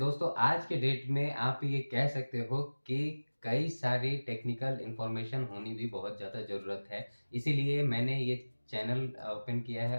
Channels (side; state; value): both; inverted; correlation -1.00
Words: आज के डेट में आप ये कह सकते हो कि कई सारी टेक्निकल इन्फॉर्मेशन होनी भी बहुत ज़्यादा ज़रूरत है। इसीलिए मैंने ये चैनल ओपन किया